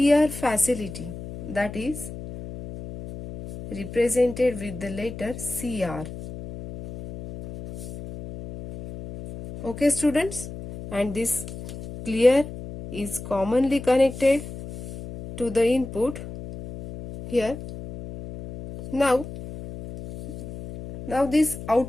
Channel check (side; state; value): left; noise; hum, 11 dB below the sound